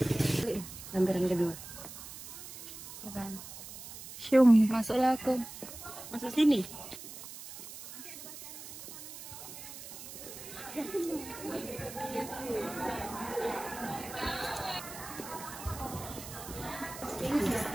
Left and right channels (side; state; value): right; noise; hiss, 12 dB below the sound